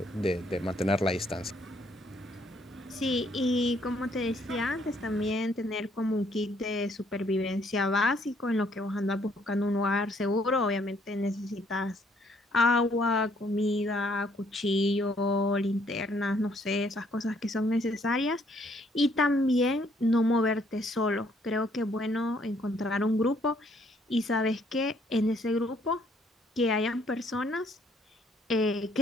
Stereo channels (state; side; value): normal; both; correlation 0.66